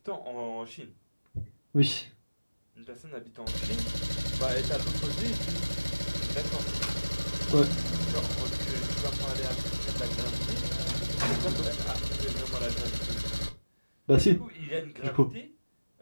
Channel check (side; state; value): both; inverted; correlation -1.00